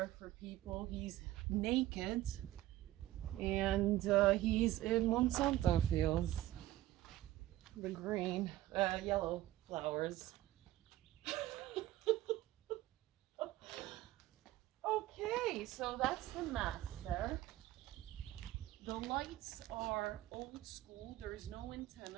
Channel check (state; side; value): quieter; left; 15.0 dB